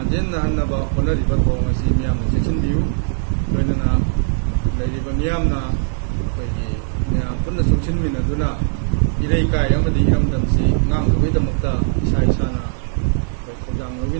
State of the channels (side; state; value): left; silent; 62 dB below the other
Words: ꯍꯣꯠꯅꯔꯤꯕ ꯊꯧꯑꯣꯡ ꯑꯁꯤ ꯃꯤꯌꯥꯝꯅ ꯆꯦꯛꯁꯤꯟꯕꯤꯌꯨ꯫ ꯂꯣꯏꯅꯅ ꯂꯩꯔꯤꯕ ꯃꯤꯌꯥꯝꯅ ꯑꯩꯈꯣꯏꯒꯤ ꯃꯌꯥꯝ ꯄꯨꯟꯅ ꯆꯨꯡꯁꯤꯟꯃꯤꯟꯅꯗꯨꯅ ꯏꯔꯩꯀꯥꯏ ꯑꯃꯗꯤ ꯏꯔꯝꯗꯝꯁꯤ ꯉꯥꯛꯅꯕꯒꯤꯗꯃꯛꯇ ꯏꯁꯥ ꯏꯁꯥꯅ ꯑꯩꯈꯣꯏ ꯊꯧꯗꯥꯡ